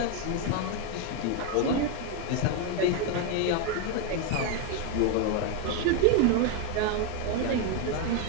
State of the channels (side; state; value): both; different; correlation 0.01